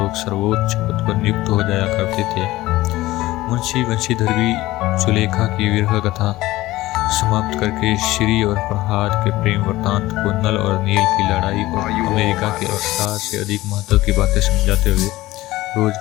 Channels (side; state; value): right; quieter; 17.5 dB